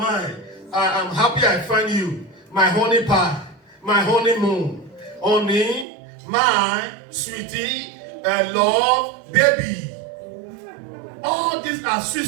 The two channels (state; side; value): drops out; left; at 5.9 s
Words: I'm happy I find you. My honey pie, my honeymoon. Honey, my sweetie, love, baby. All these are sweet,